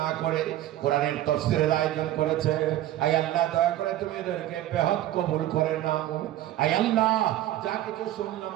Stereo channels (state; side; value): quieter; left; 13.7 dB